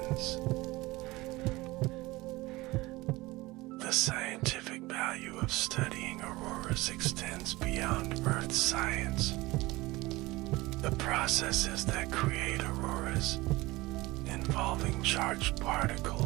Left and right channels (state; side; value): quieter; left; 20.6 dB